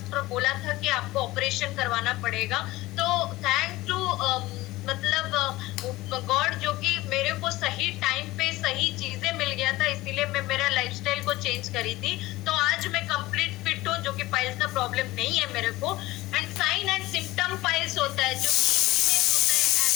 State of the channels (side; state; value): right; quieter; 18.7 dB